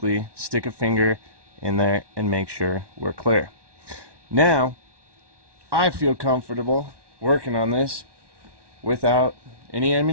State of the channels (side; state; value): left; late; 1.1 ms